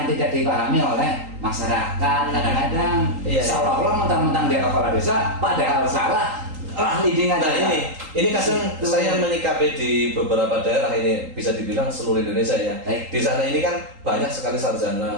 tidak dipahami oleh masyarakat kadang-kadang. Iya. Seolah-olah mentang-mentang dia kepala desa, padahal salah. Leading aja. Nah ini kadang saya menyikapi di beberapa daerah ini bisa dibilang seluruh Indonesia ya. Baik. Di sana ini kan banyak sekali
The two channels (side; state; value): left; late; 3.8 ms